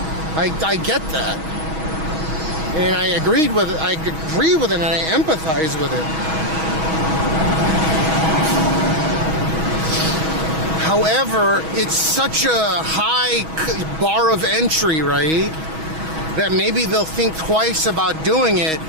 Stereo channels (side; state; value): left; late; 6.3 ms